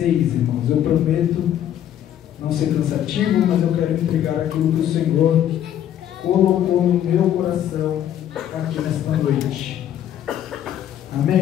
irmãos. Eu prometo não ser cansativo, mas eu quero entregar aquilo que o Senhor colocou no meu coração aqui nesta noite. Amém,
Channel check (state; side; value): quieter; right; 10.8 dB